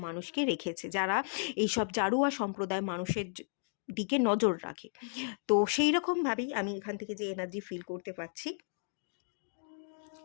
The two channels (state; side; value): silent; right; digital silence